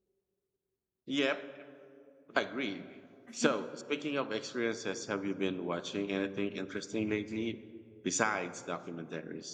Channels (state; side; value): identical; both; correlation 1.00